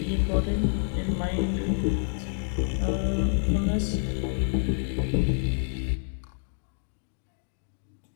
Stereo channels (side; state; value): right; silent; digital silence